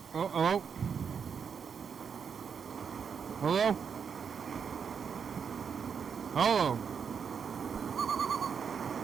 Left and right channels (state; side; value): quieter; left; 6.7 dB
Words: Oh, hello? Hello? Hello?